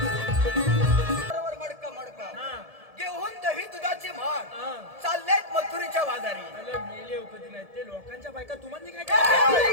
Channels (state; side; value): late; left; 1.7 ms